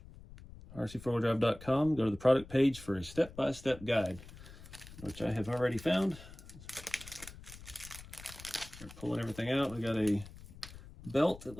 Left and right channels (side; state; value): left; noise; rumble, 17 dB below the sound